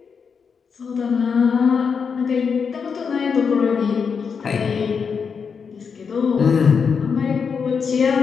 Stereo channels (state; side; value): quieter; right; 6.0 dB